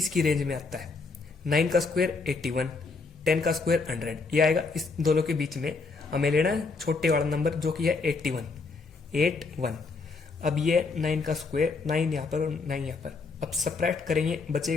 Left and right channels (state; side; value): quieter; right; 4.2 dB